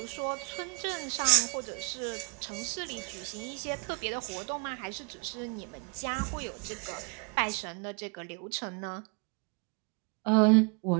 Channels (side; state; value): left; quieter; 32.6 dB